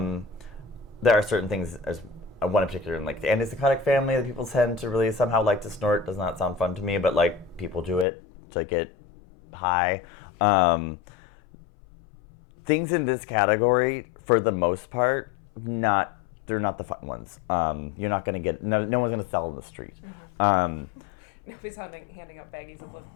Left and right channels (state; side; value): drops out; right; at 8.1 s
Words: are certain things, as one in particular in like the antipsychotic family that people tend to really somehow like to snort. Does not sound fun to me, but like people do it to get high. Things in this category, for the most part, they're not the fun ones. You're not going to get, no one's going to sell in the street. Nobody's handing out baggies of